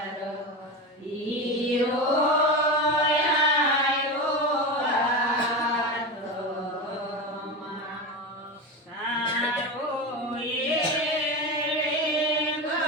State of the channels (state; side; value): normal; both; correlation 0.21